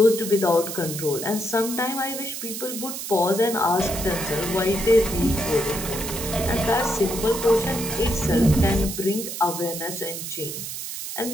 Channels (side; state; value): right; noise; hiss, 7 dB below the sound